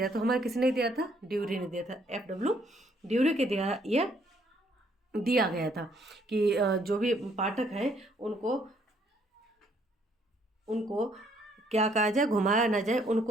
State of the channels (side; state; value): both; normal; correlation 0.67